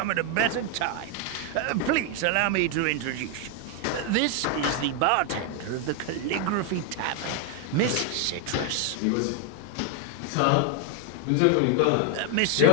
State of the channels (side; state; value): both; different; correlation 0.01